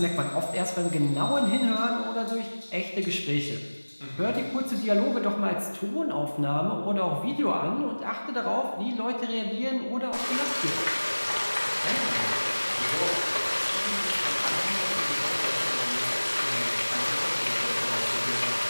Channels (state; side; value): inverted; both; correlation -1.00